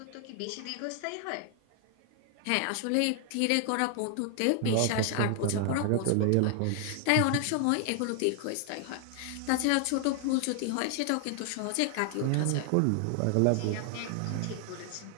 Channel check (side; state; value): both; different; correlation 0.00